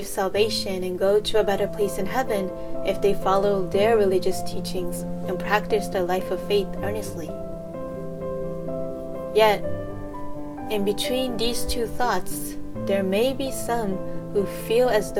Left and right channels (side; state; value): both; identical; correlation 1.00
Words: salvation and go to a better place in heaven if they follow their religious teachings and practice their life of faith earnestly. Yet, in between these two thoughts, there may be some who feel as